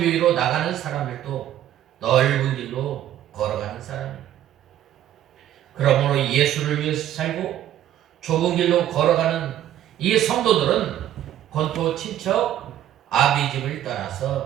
나가는 사람들도 넓은 길로 걸어가는 사람이에요. 그러므로 예수를 위해서 살고 좁은 길로 걸어가는 이 성도들은 본토 친척 아비집을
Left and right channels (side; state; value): left; quieter; 11.9 dB